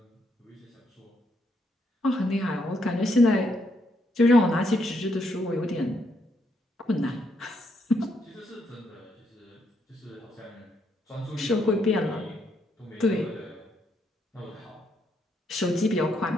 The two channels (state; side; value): normal; both; correlation 0.76